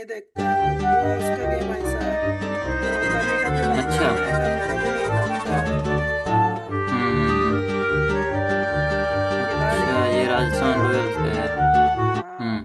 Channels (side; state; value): both; identical; correlation 1.00